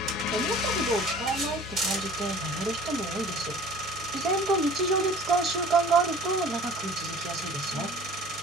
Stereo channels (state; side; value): normal; both; correlation 0.46